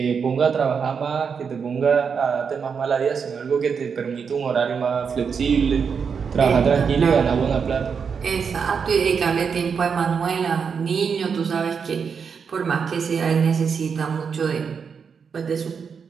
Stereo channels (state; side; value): quieter; left; 6.2 dB